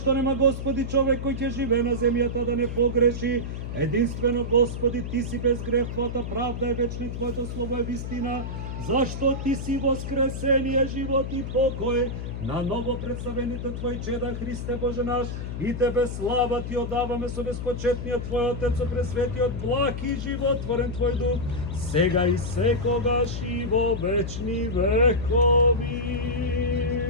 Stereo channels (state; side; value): noise; left; hum, 6 dB below the sound